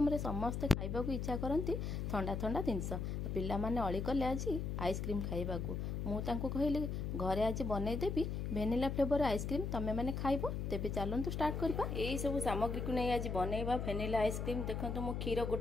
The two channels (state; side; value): noise; left; hum, 2 dB below the sound